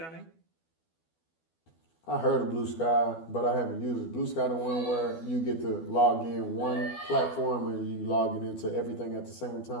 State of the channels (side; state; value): right; late; 12 ms